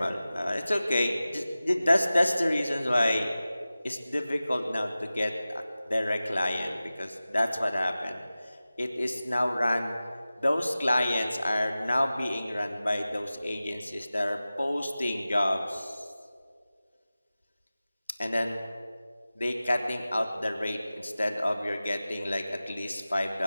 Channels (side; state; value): both; inverted; correlation -0.96